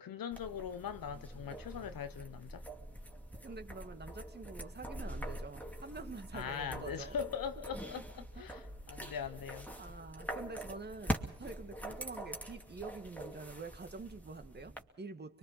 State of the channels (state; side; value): normal; both; correlation 0.32